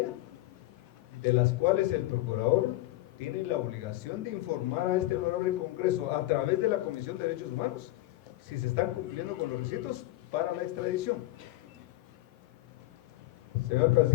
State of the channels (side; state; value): right; quieter; 17.3 dB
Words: de las cuales el Procurador tiene la obligación de informar a este honorable Congreso a través de la Comisión de Derechos Humanos si se están cumpliendo con los requisitos para la extradición. Señor